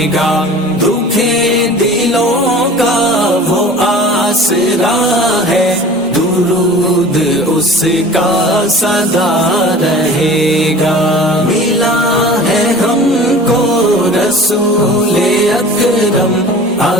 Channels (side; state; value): both; normal; correlation 0.42